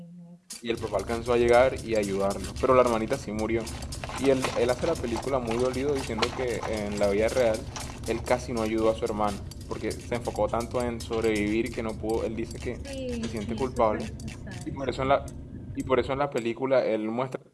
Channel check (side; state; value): both; identical; correlation 1.00